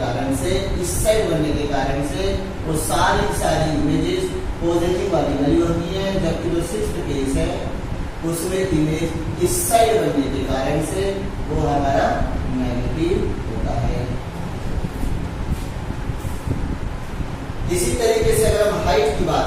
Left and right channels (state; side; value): identical; both; correlation 1.00